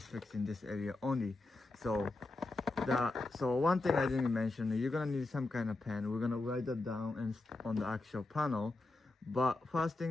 fixing this area only. So one thing I didn't mention, you're gonna need some kind of pen. We're gonna write that down and on the actual panel. But first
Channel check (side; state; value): right; quieter; 3.0 dB